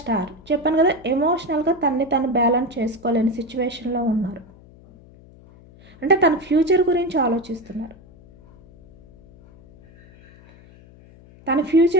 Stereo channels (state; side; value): noise; left; hum, 24 dB below the sound